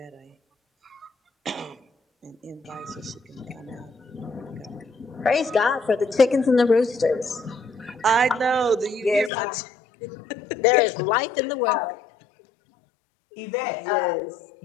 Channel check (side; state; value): right; drops out; at 9.3 s